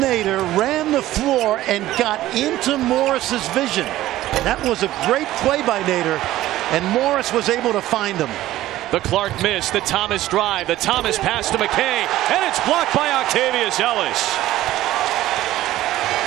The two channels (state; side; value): quieter; left; 15.0 dB